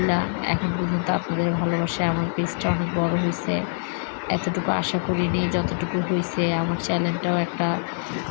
এখন পর্যন্ত আপনাদের ভালোবাসায় আমার পেজটা অনেক বড় হয়েছে। এতটুকু আশা করিনি যতটুকু হয়েছে। আমার চ্যানেলটাও একটা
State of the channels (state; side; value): silent; right; 60 dB below the other